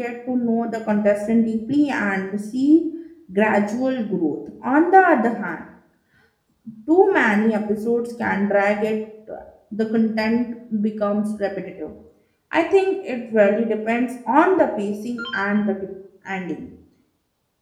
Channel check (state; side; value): identical; both; correlation 1.00